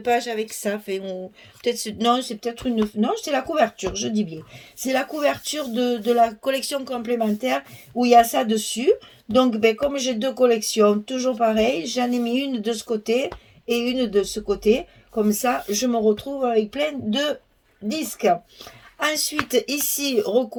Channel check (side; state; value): both; identical; correlation 1.00